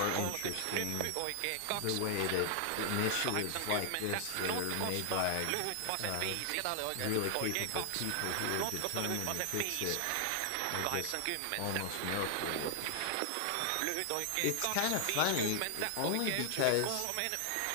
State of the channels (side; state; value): both; different; correlation 0.00